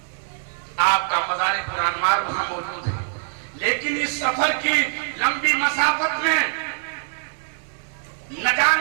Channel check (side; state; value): left; silent; digital silence